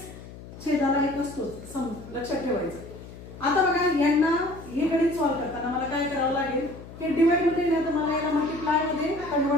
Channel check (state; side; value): noise; left; hum, 15 dB below the sound